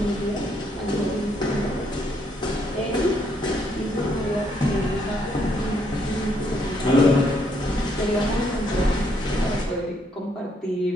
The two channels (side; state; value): both; normal; correlation 0.72